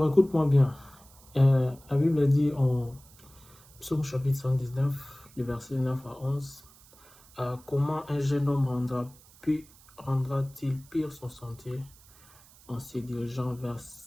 écoute-moi bien. La Bible dit en Psaume chapitre 119, le verset 9 à 11, comment un jeune homme rendra-t-il pire son sentier en se dirigeant vers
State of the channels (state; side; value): noise; right; hiss, 25 dB below the sound